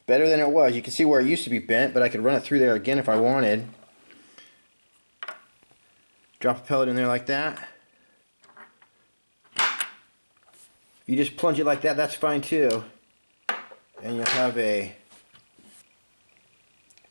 Better than it was. You can see where it used to be bent, but I could run it through there again if I wanted. Drop a pellet in there like that. If you just plunge it like that, that's fine too. And you'll have a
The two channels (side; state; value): both; inverted; correlation -1.00